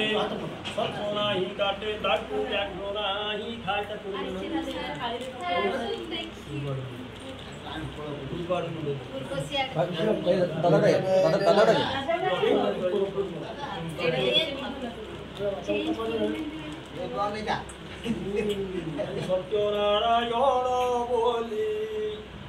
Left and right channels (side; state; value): both; identical; correlation 1.00